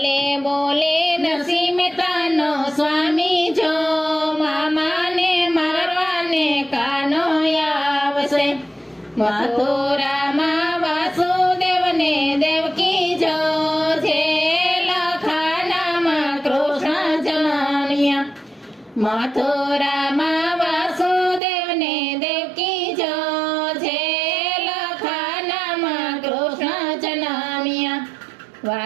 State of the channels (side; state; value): left; drops out; at 21.4 s